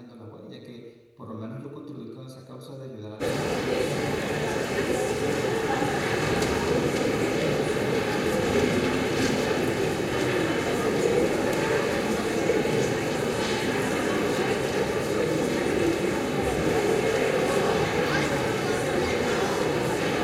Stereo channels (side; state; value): both; identical; correlation 1.00